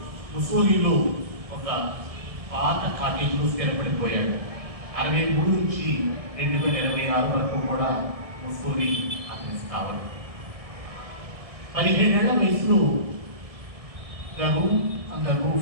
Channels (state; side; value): late; left; 1.7 ms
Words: ముసోలిలో ఒక పాత కాటేజ్లో స్థిరపడిపోయాడు. 63 నుంచి 2026 వరకు కూడా ముసోలి అతని స్థావరం. 17 ఏళ్ల వయసులో the room on the